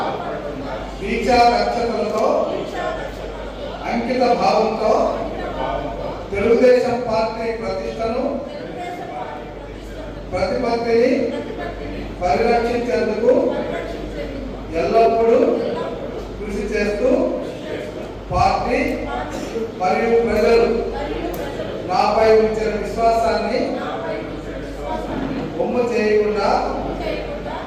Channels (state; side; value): identical; both; correlation 1.00